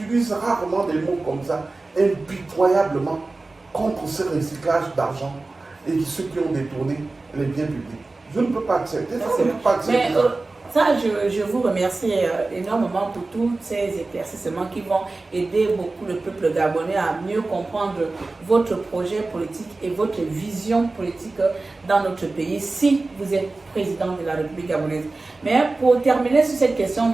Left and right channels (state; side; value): quieter; left; 3.4 dB